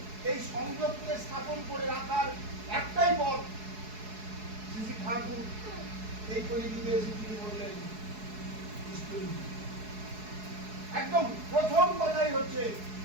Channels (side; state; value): left; late; 4.7 ms